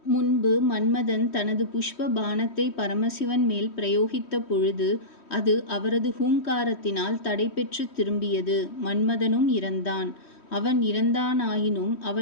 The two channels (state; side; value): late; right; 3.1 ms